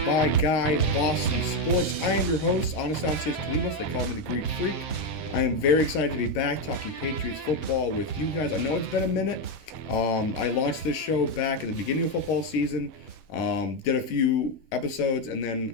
by Guy Boston Sports. I am your host, Anastasios Kilimos. They call me the Greek Freak. I am very excited to be back talking Patriots football with you guys. I know it's been a minute. I launched this show back at the beginning of football season, did a few episodes, and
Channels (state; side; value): late; right; 7.7 ms